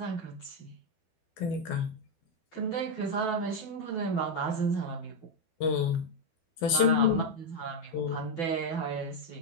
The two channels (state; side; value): late; right; 12 ms